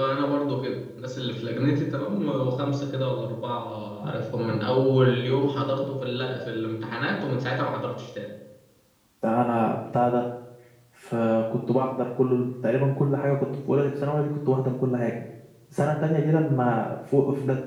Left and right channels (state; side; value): identical; both; correlation 1.00